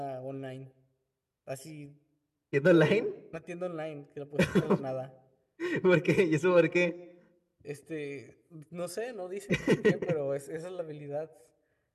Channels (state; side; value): identical; both; correlation 1.00